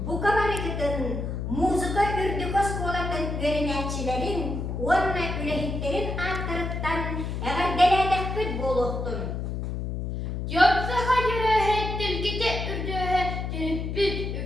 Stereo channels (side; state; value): left; noise; hum, 3 dB below the sound